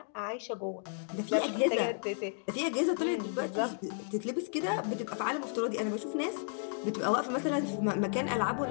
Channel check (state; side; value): silent; right; 56 dB below the other